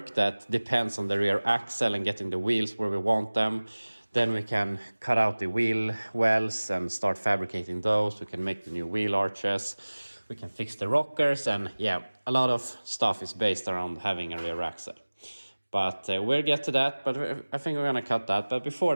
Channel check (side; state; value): both; inverted; correlation -1.00